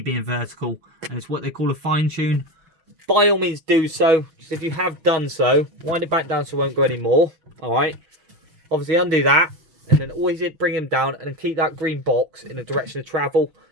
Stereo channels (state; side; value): late; left; 6.2 ms